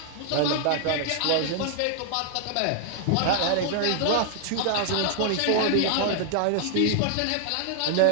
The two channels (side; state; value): both; different; correlation 0.00